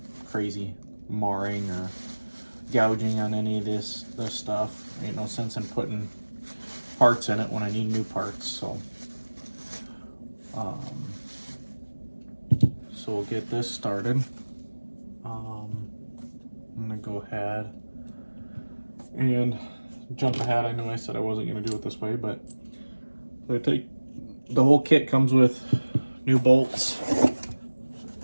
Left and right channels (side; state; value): both; inverted; correlation -1.00